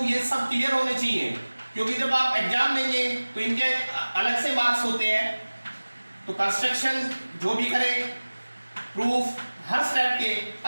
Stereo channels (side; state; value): both; inverted; correlation -1.00